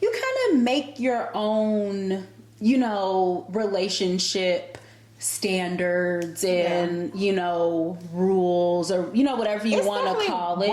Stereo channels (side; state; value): both; identical; correlation 1.00